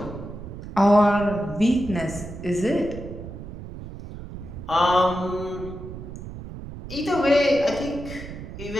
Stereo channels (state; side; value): noise; right; rumble, 11 dB below the sound